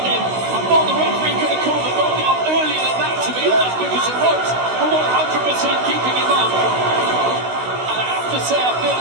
him. I thought the referee could have called the knockout earlier than that, to be honest, because the ropes were 100% keeping him up. And I have to say, I feel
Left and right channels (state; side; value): late; left; 16 ms